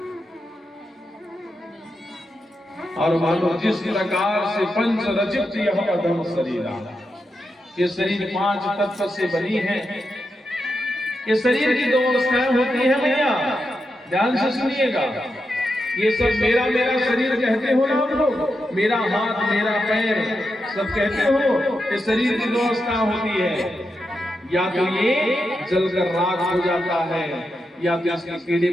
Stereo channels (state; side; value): normal; both; correlation 0.86